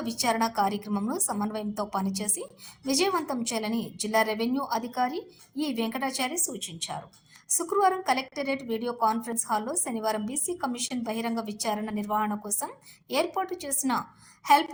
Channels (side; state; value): both; identical; correlation 1.00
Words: విచారణ కార్యక్రమంను సమన్వయంతో పనిచేసి విజయవంతం చేయాలని జిల్లా రెవెన్యూ అధికారి ఈ వెంకటాచారి సూచించారు. శుక్రవారం కలెక్టరేట్ వీడియో కాన్ఫరెన్స్ హాల్లో శనివారం బీసీ కమిషన్ బహిరంగ విచారణ నిర్వహణ కోసం ఏర్పాటు చేసిన help